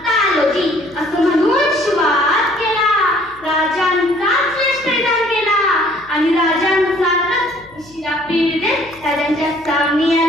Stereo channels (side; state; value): left; noise; hum, 26 dB below the sound